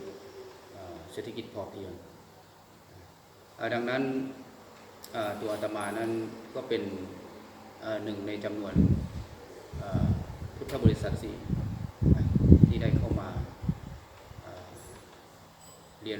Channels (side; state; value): both; identical; correlation 1.00